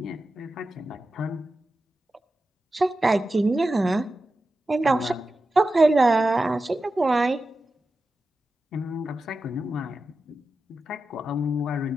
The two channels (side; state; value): both; normal; correlation 0.92